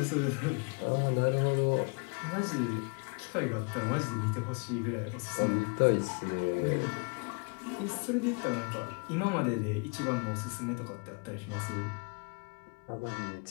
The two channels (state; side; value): quieter; right; 31.9 dB